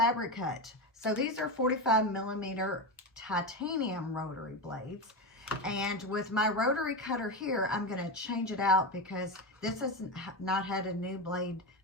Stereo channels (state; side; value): normal; both; correlation 0.16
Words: Hut. So these are 45mm titanium rotary blades, and with my rotary cutter here I'm going to change it out because this has not had a new blade